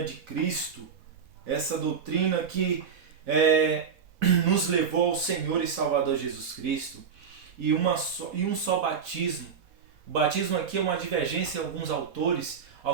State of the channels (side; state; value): left; quieter; 6.6 dB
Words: de Cristo. Essa doutrina que nos levou ao Senhor e Salvador Jesus Cristo. E um só batismo. O batismo aqui é uma divergência em alguns autores.